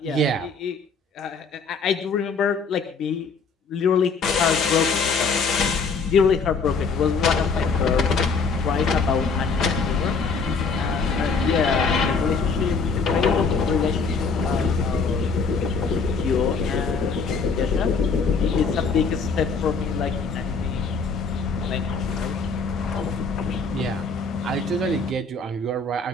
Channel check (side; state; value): right; quieter; 4.6 dB